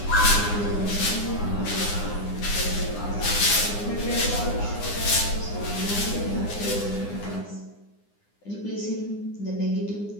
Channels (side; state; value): right; late; 9.8 ms